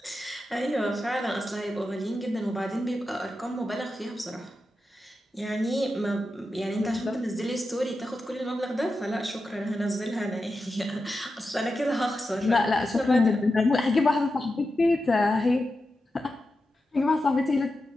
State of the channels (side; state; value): both; normal; correlation 0.90